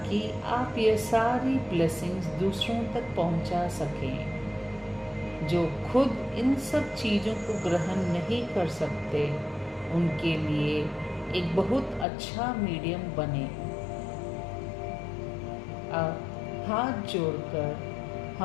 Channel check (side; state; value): right; drops out; at 12.1 s